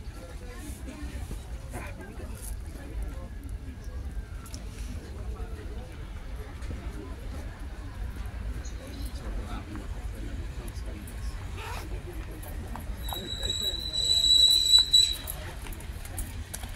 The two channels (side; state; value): both; identical; correlation 1.00